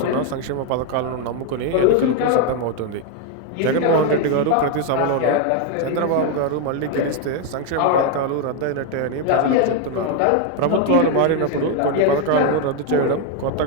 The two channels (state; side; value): different; both; correlation 0.01